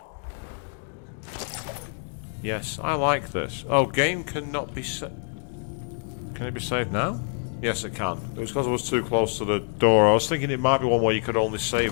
Yes, I like this. Oh, game cannot be saved. Can it be saved now? Yes, it can. It was because I was too close to the door. I was thinking it might be one where you could only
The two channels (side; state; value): right; silent; 55 dB below the other